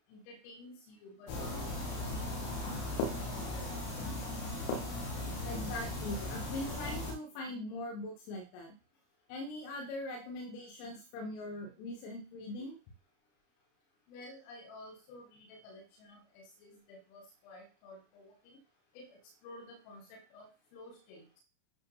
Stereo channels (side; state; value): right; late; 33 ms